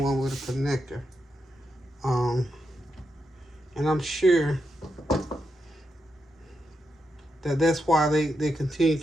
one with a connector. And I'm sure that's why they continue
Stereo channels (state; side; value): normal; both; correlation 0.85